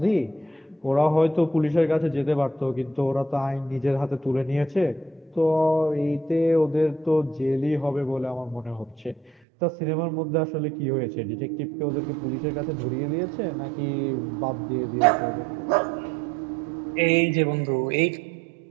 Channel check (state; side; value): drops out; left; at 9.3 s